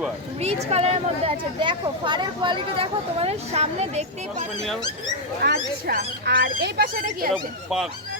রিচ কালারের মধ্যে আছে। দেখো ফারের কোয়ালিটি দেখো তোমাদের সামনে দেখতেই পাচ্ছ। আচ্ছা আর এই পাশে এটা কি আছে? পাক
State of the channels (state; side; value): normal; both; correlation -0.02